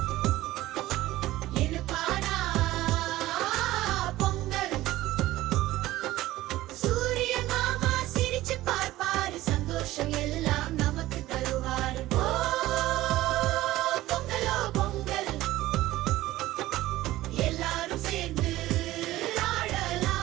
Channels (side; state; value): left; quieter; 16.4 dB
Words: இனிப்பானா பொங்கல். சூரியன் மாமா சிரிச்சு பார்ப்பாரு, சந்தோஷம் எல்லாம் நமக்கு தருவாரு. ஓ பொங்கலோ பொங்கல், எல்லாரும் சேர்ந்து